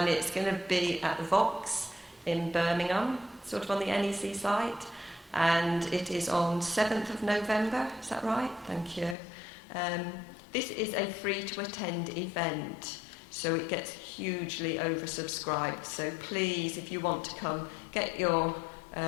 it's going to be at the Vox in Birmingham, sort of on the NEC site, and it is on 7th of November, is that right? Thank you. This is a free-to-attend event, so it gets hugely oversubscribed. So please, if you want to come, get your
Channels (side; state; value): right; drops out; at 9.2 s